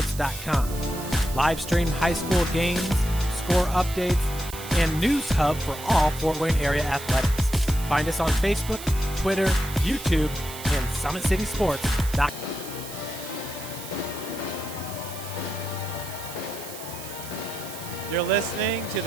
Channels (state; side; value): noise; right; hiss, 12 dB below the sound